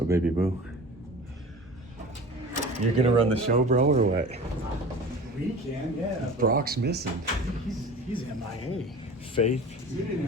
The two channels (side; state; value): both; normal; correlation 0.38